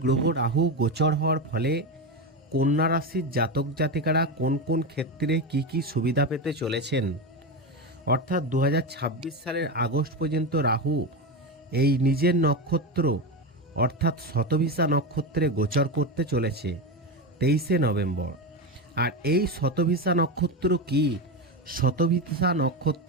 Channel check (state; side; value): normal; both; correlation 0.16